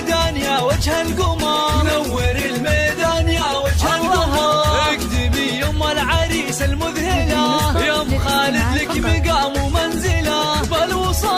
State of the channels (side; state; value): both; identical; correlation 1.00